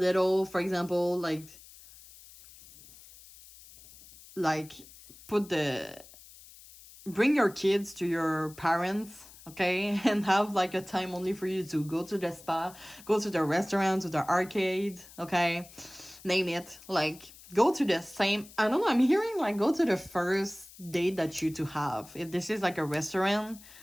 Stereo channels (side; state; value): left; noise; hiss, 20 dB below the sound